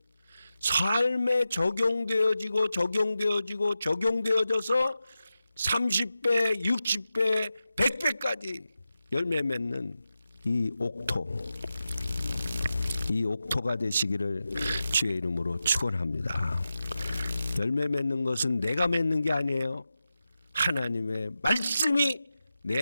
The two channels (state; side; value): inverted; both; correlation -0.92